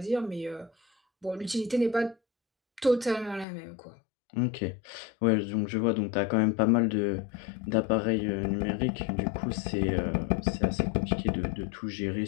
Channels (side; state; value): right; drops out; at 3.5 s